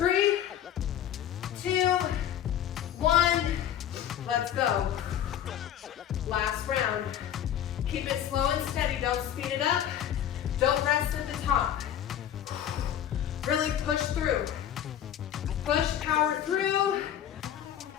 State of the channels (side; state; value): right; quieter; 10.4 dB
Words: 2, 1. Let's go. Last round. Keep it slow and steady. Don't speed it up. Don't rest at the top. Really push through. Push, power through.